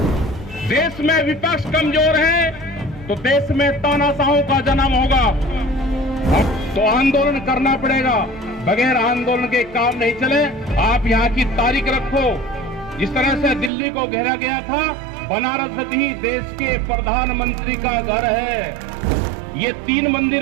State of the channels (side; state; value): left; drops out; at 13.7 s